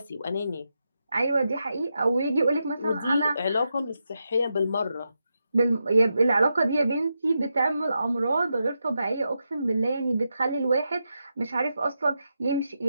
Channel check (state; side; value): inverted; both; correlation -0.87